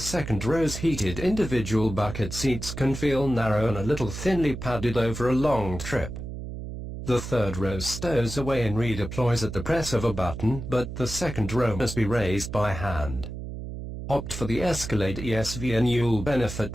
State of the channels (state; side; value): noise; right; hum, 8 dB below the sound